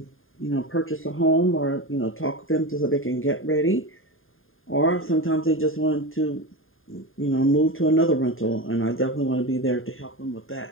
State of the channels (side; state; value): right; late; 0.59 ms